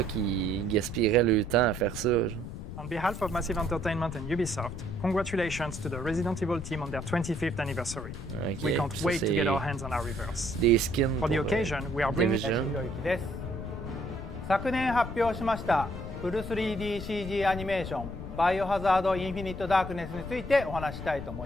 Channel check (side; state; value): left; noise; rumble, 9 dB below the sound